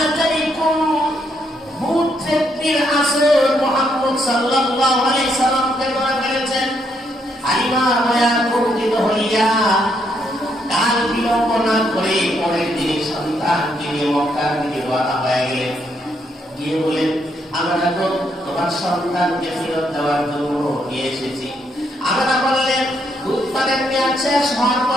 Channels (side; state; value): both; normal; correlation 0.75